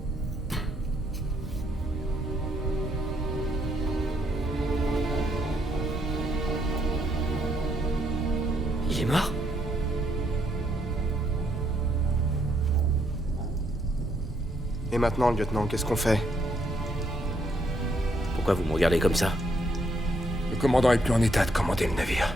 Il est mort? Et maintenant, lieutenant, qu'est-ce qu'on fait? Pourquoi vous me regardez comme ça? Le commandant est plus en état de commander le navire.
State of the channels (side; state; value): both; normal; correlation 0.73